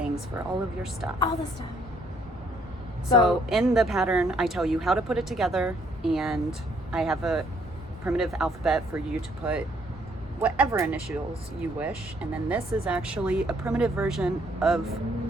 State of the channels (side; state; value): both; normal; correlation 0.67